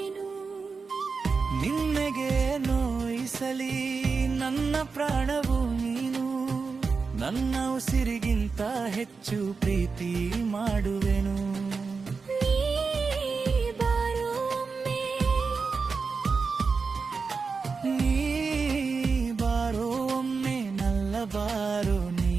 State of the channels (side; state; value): left; quieter; 4.8 dB